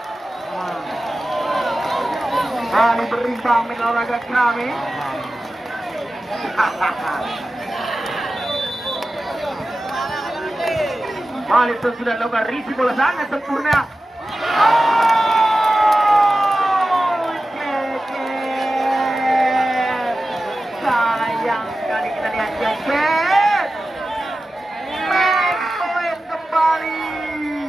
berimbang main olahraga kami. Balik itu sudah lakukan risi bola sangat sempurna. Sayang sekali kita lihat Ceket. Main poin kembali.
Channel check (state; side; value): normal; both; correlation 0.94